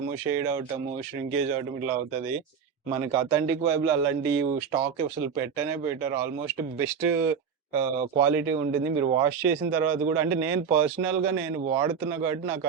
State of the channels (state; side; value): quieter; left; 6.8 dB